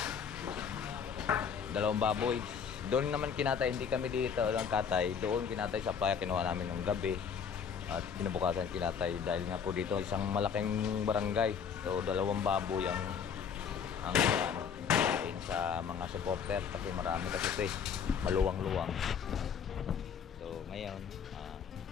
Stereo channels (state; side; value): quieter; right; 7.1 dB